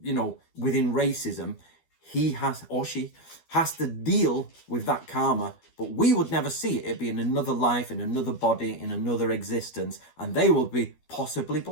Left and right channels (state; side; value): late; right; 12 ms